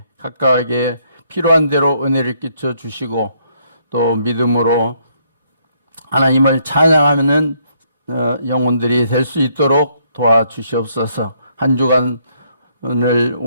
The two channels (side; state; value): both; inverted; correlation -0.70